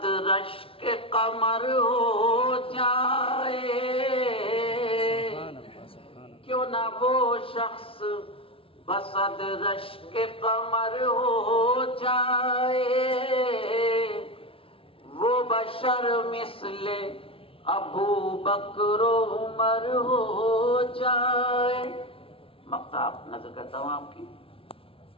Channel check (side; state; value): right; late; 0.26 ms